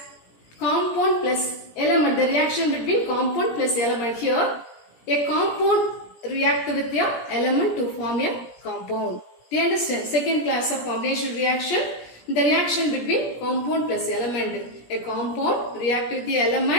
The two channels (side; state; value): right; late; 17 ms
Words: compound plus element, the reaction between compound plus element. Here, a compound react with the element to form a compound. Do you understand? Second class of combination reaction, the reaction between compound plus element. A compound react with the